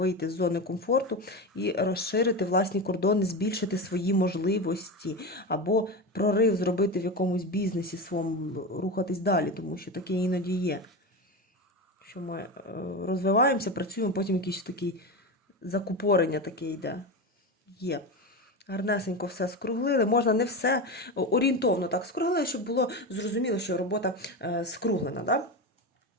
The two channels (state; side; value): normal; both; correlation 0.20